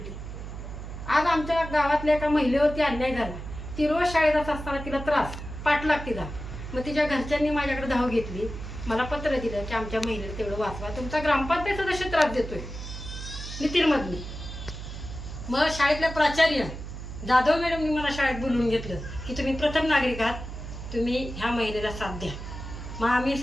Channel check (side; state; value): right; noise; hum, 9 dB below the sound